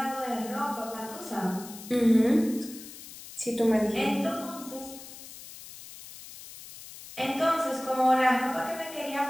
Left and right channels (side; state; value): left; noise; hiss, 15 dB below the sound